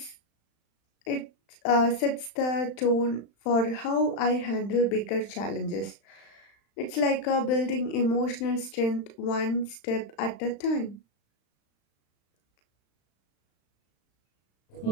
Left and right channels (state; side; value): late; right; 35 ms